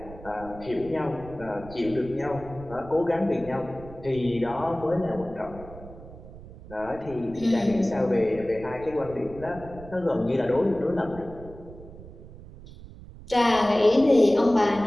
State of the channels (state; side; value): noise; right; rumble, 16 dB below the sound